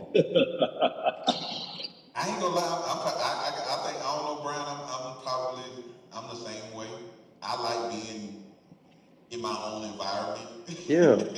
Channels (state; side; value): identical; both; correlation 1.00